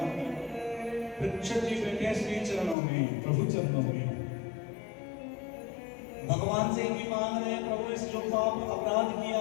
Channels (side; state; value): right; drops out; at 2.8 s